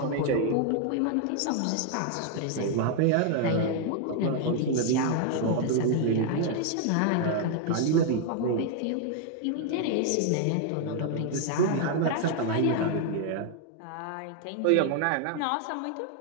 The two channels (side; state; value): both; different; correlation 0.00